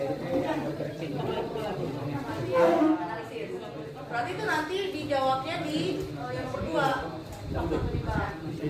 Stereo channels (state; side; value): identical; both; correlation 1.00